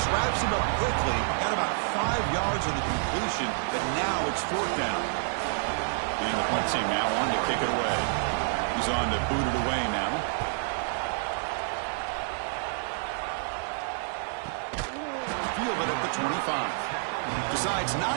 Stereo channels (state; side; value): silent; left; 59 dB below the other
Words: wraps him up quickly. Got about 5 yards of the completion, but now it's 4th down. And the punt team now on to kick it away. He's on to boot it away now. Field it at the 25. Decides